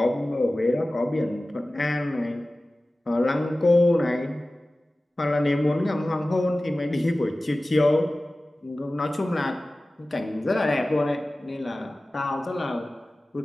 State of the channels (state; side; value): normal; both; correlation 0.97